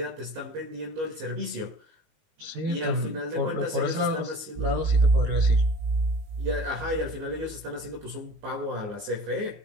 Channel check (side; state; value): left; late; 19 ms